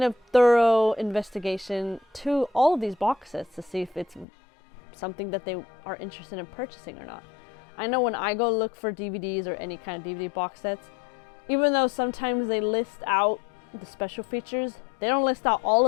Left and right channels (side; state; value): right; drops out; at 4.2 s